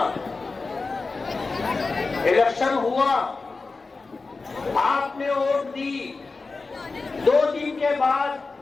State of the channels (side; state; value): right; quieter; 4.0 dB